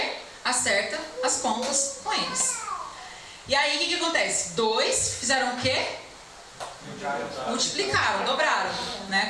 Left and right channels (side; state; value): both; identical; correlation 1.00